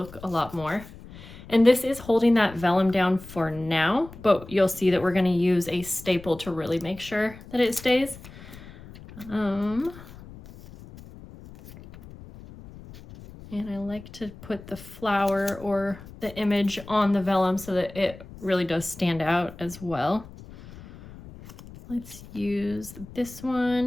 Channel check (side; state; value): left; noise; rumble, 17 dB below the sound